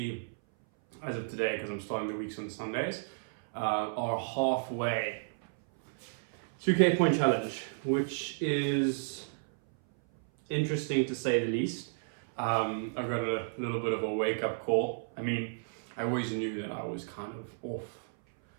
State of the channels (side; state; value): left; silent; 56 dB below the other